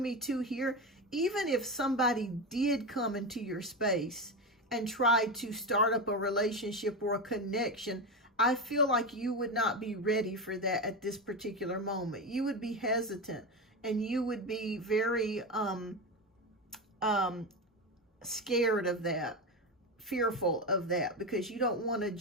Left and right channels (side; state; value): both; normal; correlation 0.17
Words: me too here, even if somebody did come into your space and try to start up a relationship or a connection, I feel like you would not be ready for that at this particular moment. You would be hesitant, and you would be very scared of that, fearful of that, because you don't want to